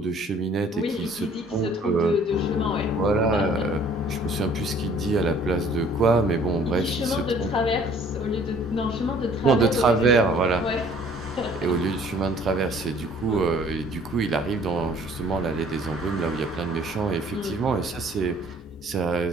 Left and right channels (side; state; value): both; normal; correlation 0.55